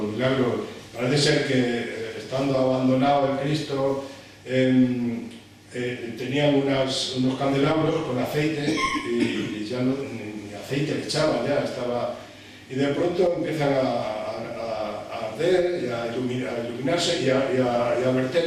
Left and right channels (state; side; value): identical; both; correlation 1.00